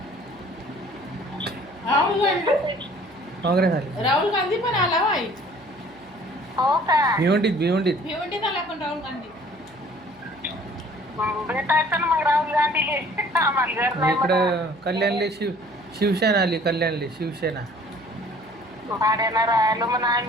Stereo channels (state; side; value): noise; right; hum, 27 dB below the sound